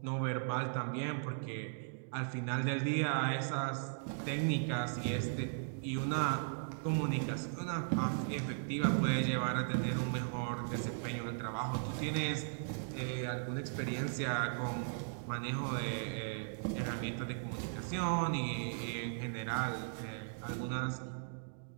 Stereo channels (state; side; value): silent; left; digital silence